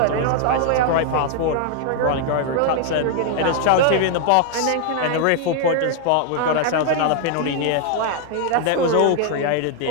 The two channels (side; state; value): both; different; correlation 0.00